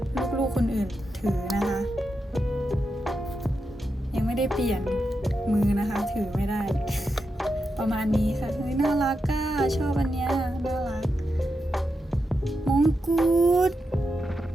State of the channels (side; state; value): both; normal; correlation 0.87